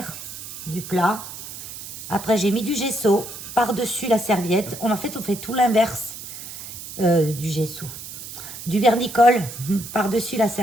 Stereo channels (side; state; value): right; noise; hiss, 11 dB below the sound